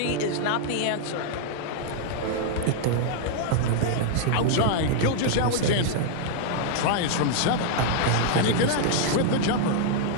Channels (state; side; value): different; both; correlation -0.01